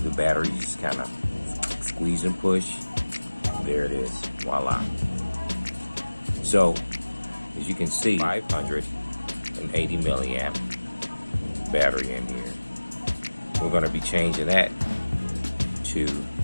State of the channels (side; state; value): both; inverted; correlation -1.00